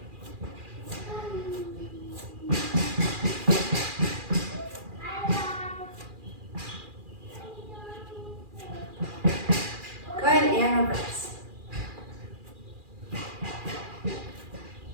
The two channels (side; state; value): left; late; 2.4 ms